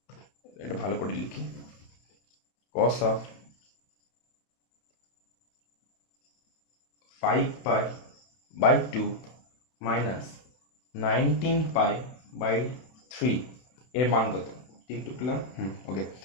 এটা ভালো করে লিখি, কস অফ 5π/2 মাইনাস 19π/3 এর মান কত? টিকটুক পেলাম, ওকে,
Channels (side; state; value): right; late; 31 ms